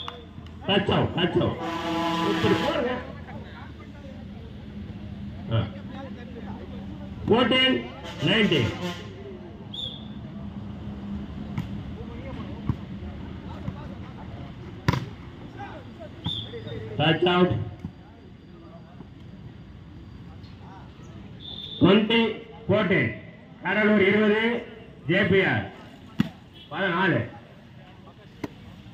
touch out. இப்படி போடுங்க. 14-19. touch out. 20-14. Cuddalore 20, JPR 14.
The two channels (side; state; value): both; identical; correlation 1.00